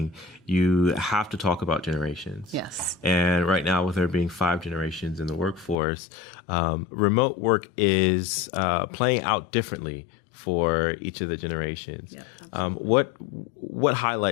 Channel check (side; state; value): right; drops out; at 5.8 s